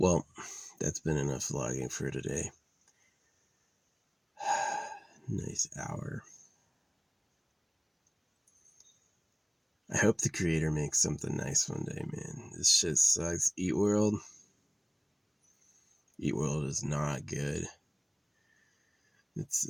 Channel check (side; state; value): both; identical; correlation 1.00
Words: that's been enough vlogging for today. Nice hour. I hope the creator makes something nice one day, man. This shit sucks. Eat World is not good. It's